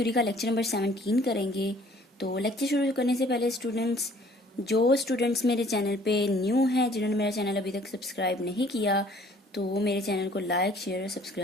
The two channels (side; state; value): both; normal; correlation 0.56